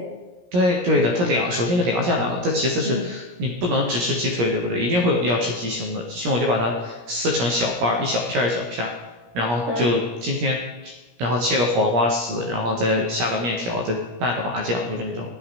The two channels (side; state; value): left; late; 17 ms